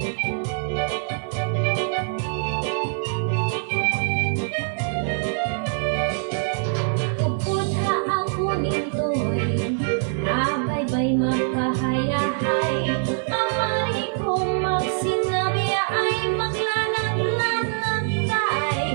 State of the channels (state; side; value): silent; left; 63 dB below the other